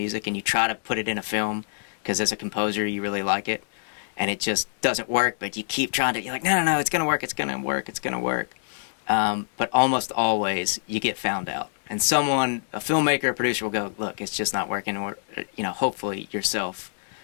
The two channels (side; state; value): right; silent; digital silence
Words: and you try to put it in a film because as a composer you really like it, and it just doesn't work, but you keep trying to, you're like, no, it's going to work, it's going to work, it's going to work. But almost always you get found out. And a filmmaker, a producer will go, look, it's just not working. Or, hopefully yourself,